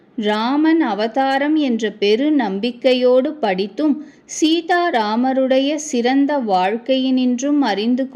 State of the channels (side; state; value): both; identical; correlation 1.00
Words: ராமன் அவதாரம் என்ற பெரு நம்பிக்கையோடு படித்தும் சீதாராமருடைய சிறந்த வாழ்க்கையினின்றும் அறிந்து